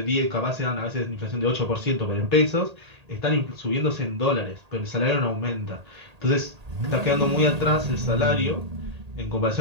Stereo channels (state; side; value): late; left; 1.8 ms